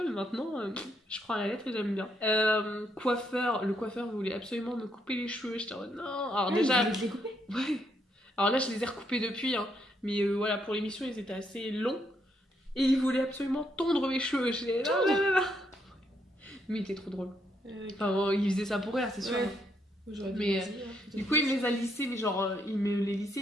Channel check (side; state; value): both; normal; correlation 0.75